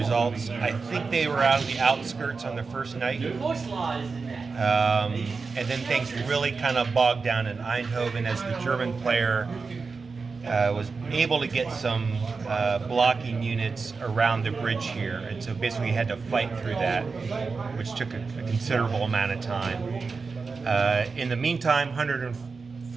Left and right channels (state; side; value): quieter; left; 4.6 dB